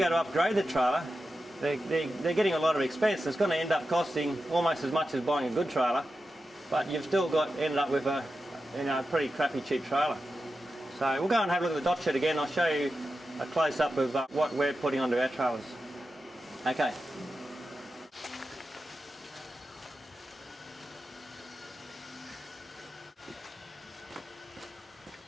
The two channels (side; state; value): both; normal; correlation 0.91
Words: to upgrade the trailer, they're getting a lot of expense. It's going to end up costing almost as much as buying a good trailer, but you've still ended up with a pretty crappy cheap trailer. So we'll go and have a look at the dot shed again. I'll show you a close-up of what we're putting onto our trailers. Okay.